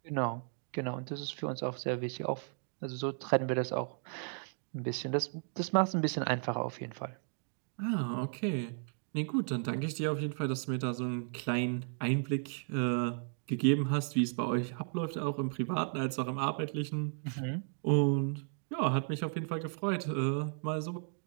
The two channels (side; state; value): left; silent; 55 dB below the other